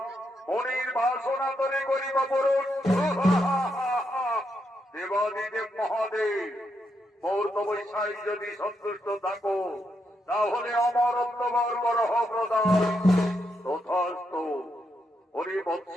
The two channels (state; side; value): normal; both; correlation 0.81